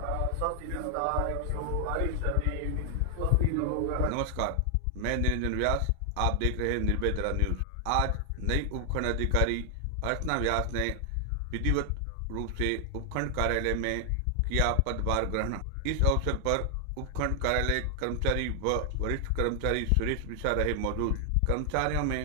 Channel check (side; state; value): both; different; correlation 0.00